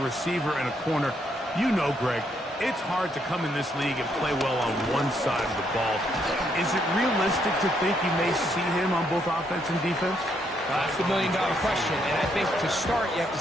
and a corner. You know, Greg, it's hard to come in this league and play well on one side of the ball. Is it realistic to think you may see him on both offense and defense? That's the million-dollar question, and I think to start, you have to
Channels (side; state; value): both; normal; correlation 0.74